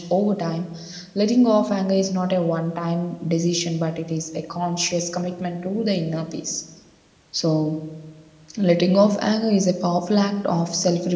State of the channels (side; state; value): both; identical; correlation 1.00